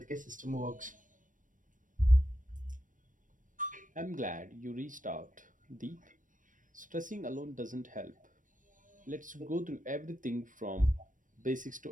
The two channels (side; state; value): left; late; 0.38 ms